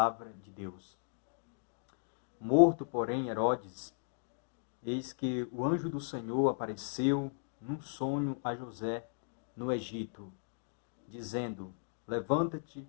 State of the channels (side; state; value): right; silent; digital silence